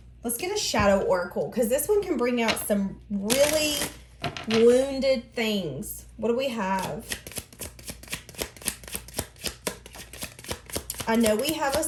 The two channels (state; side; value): identical; both; correlation 1.00